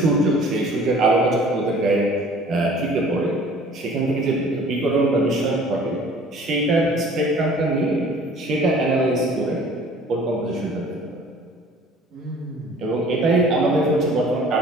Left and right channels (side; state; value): both; normal; correlation 0.50